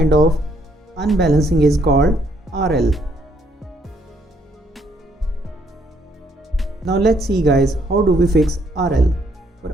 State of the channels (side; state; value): both; normal; correlation 0.69